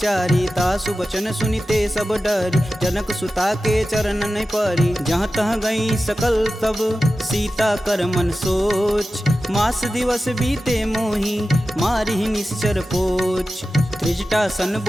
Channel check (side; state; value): both; normal; correlation 0.94